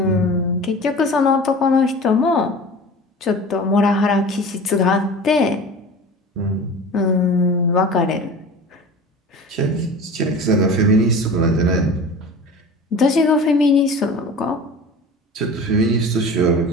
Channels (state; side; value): normal; both; correlation 0.37